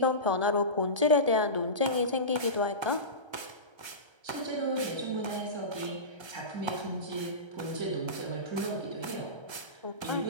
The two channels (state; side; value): late; left; 1.3 ms